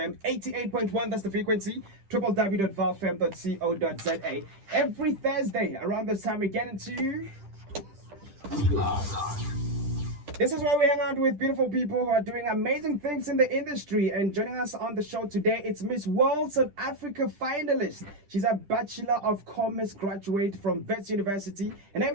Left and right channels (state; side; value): late; left; 10 ms